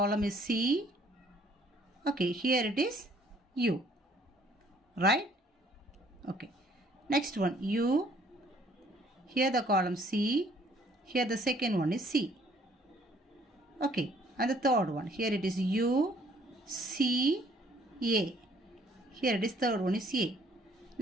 is C. Okay, here it is U, right? Okay, next one U, here the column C, here the second one is C. Okay, and the third one, here it is U, C, A. Here it is third one is A.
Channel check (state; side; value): normal; both; correlation 0.61